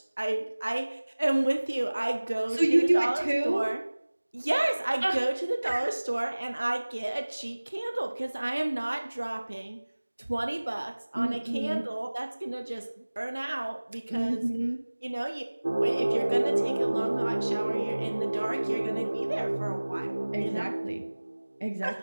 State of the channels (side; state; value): both; inverted; correlation -1.00